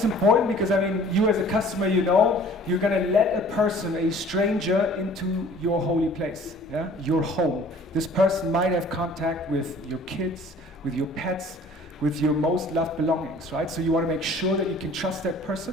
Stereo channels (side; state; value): both; normal; correlation 0.51